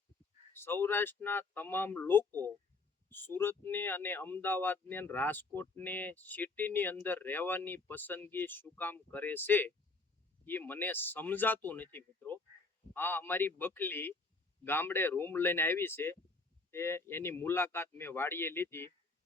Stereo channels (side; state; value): right; quieter; 3.7 dB